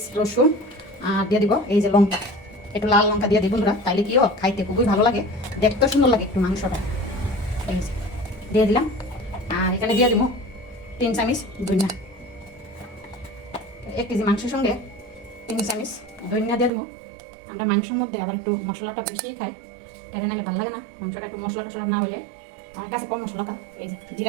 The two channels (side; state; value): left; drops out; at 16.7 s